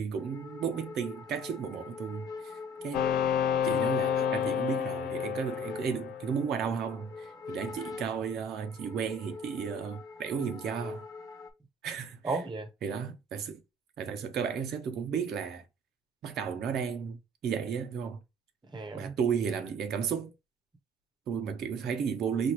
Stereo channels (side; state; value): both; normal; correlation 0.51